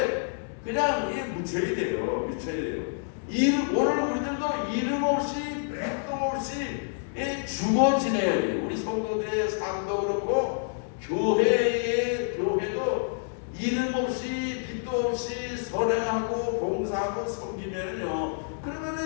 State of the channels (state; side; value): silent; right; digital silence